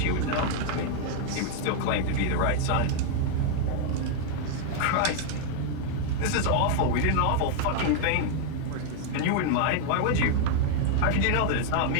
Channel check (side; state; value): both; different; correlation 0.00